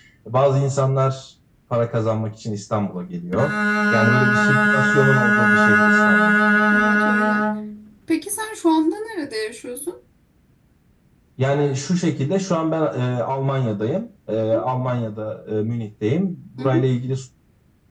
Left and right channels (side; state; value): both; identical; correlation 1.00